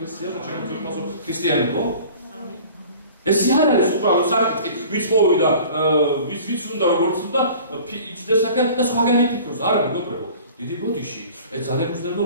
და ჩვენ ვფასო ქრისტიანებო? ეს არ არის უბრალოდ საკითხი, ვიც მოვიდა, ვიც უნდა როგორც უნდა იჭდეს აქ და სხვაგანი ფიქრობს, არა მეგობრებო. დიდი ბოდიში, ეს ძალიან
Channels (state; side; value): inverted; both; correlation -0.45